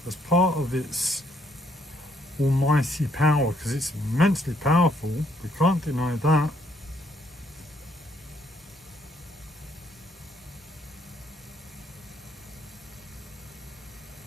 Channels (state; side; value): normal; both; correlation 0.69